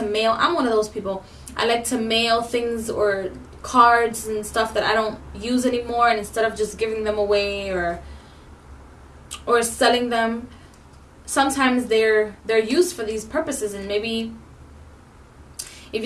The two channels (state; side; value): identical; both; correlation 1.00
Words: mail, I'm one of those people, I like to mail things or cards and stuff that I don't use anymore, and instead of just giving them away or selling them, sometimes they're used for these purposes. And maybe if